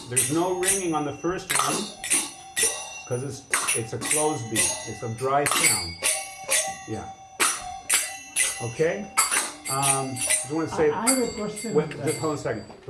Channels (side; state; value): both; identical; correlation 1.00